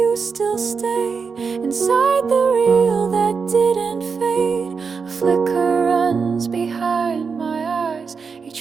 still stay inside the reel that didn't fade. A flicker runs behind my eyes,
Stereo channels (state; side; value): quieter; left; 5.4 dB